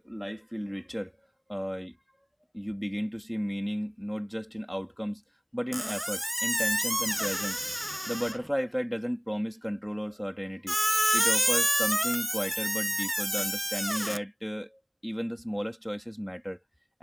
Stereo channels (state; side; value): identical; both; correlation 1.00